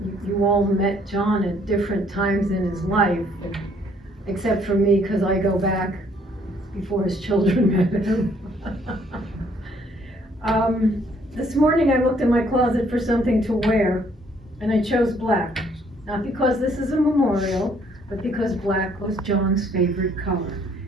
you all met John at different times in his life, except for me, because I go back before his children met him. This morning I looked in my closet for something to wear, and I chose black. Not because this is a memorial, but because black was John's favorite color.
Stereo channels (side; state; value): both; normal; correlation 0.64